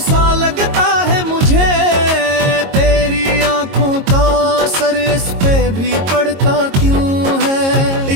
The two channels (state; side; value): late; left; 22 ms